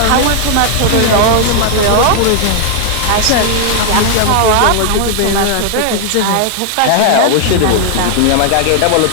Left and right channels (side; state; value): both; different; correlation 0.00